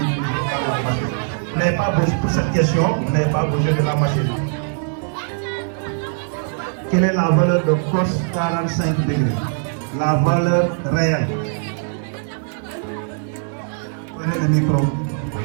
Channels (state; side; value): silent; left; digital silence